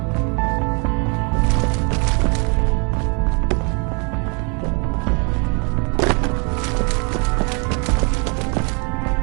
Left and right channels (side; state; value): left; quieter; 34.4 dB